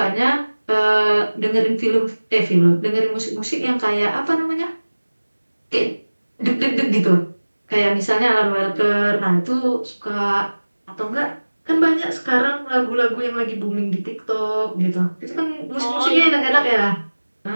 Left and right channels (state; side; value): inverted; both; correlation -1.00